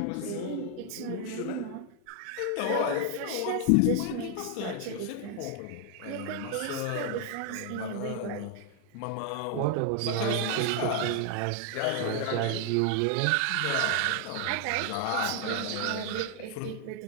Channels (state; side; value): different; both; correlation 0.00